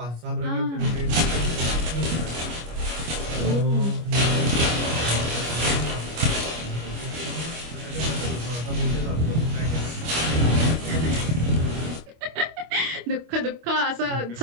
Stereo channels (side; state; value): left; late; 25 ms